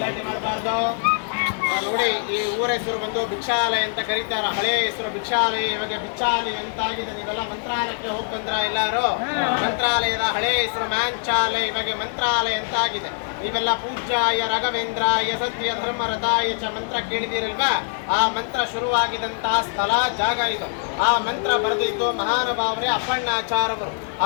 ಮಾಡಬಾರ್ದು. ನೋಡಿ, ಈ ಊರ ಹೆಸರು ಬಂದು ಭಿಕ್ಷಾಲಯ ಅಂತ ಕರೀತಾರ. ಹಳೆಯ ಹೆಸರು ಭಿಕ್ಷಾಲಯ, ಇವಾಗ ಬಿಚ್ಚಾಲಯ ಅಂತಾಗಿದೆ. ನೀವೆಲ್ಲ ಮಂತ್ರಾಲಯಕ್ಕೆ ಹೋಗಿ ಬಂದ್ರ ಎಲ್ಲಾರು? ಮಂತ್ರಾಲಯದ ಹಳೆಯ ಹೆಸರು ಮ್ಯಾಂಚಾಲಯ, ಇವಾಗ ಮಂತ್ರಾಲಯ ಅಂತ ಆಗಿದೆ. ನೀವೆಲ್ಲ ಪೂಜ್ಯಾಯ ರಾಘವೇಂದ್ರಾಯ ಸತ್ಯ ಧರ್ಮರಥಾಯ ಚ ಮಂತ್ರ ಕೇಳಿದಿರಲ್ವಾ? ಆ ಮಂತ್ರ ಶುರುವಾಗಿದಂತಹ ಸ್ಥಳ ಜಾಗ ಇದು. ಆ ಮಂತ್ರ ಬರೆದಿದ್ದು ಮಹಾನುಭಾವರೇ ಅಪ್ಪಣ್ಣಾಚಾರ್ಯವರು.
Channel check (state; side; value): silent; right; 63 dB below the other